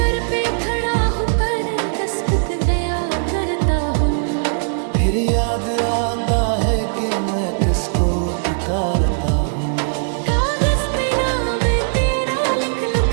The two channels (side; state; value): left; silent; digital silence